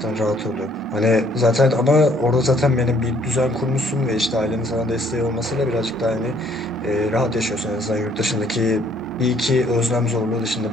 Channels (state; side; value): normal; both; correlation 0.64